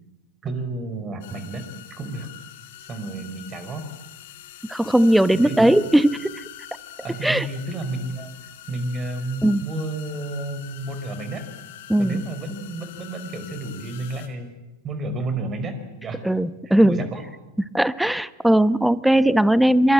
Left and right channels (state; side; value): normal; both; correlation 0.91